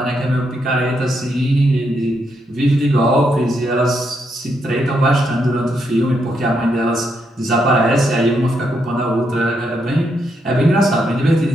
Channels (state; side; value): normal; both; correlation 0.79